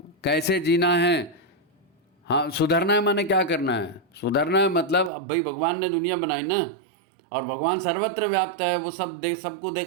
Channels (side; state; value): left; drops out; at 5.1 s